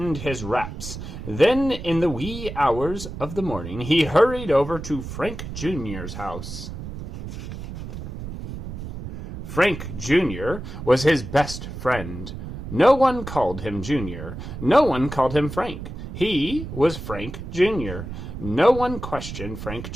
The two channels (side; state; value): right; noise; rumble, 9 dB below the sound